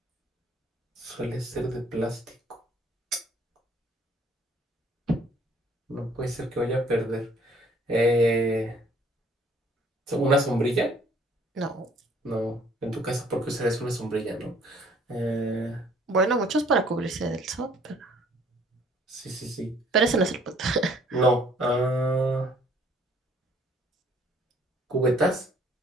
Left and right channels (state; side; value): normal; both; correlation 0.59